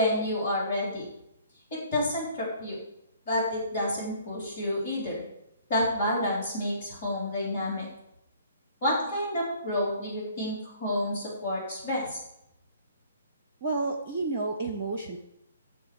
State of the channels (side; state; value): both; inverted; correlation -0.55